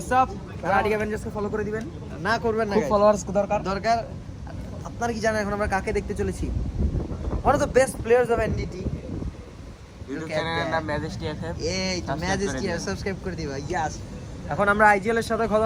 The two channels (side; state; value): both; identical; correlation 1.00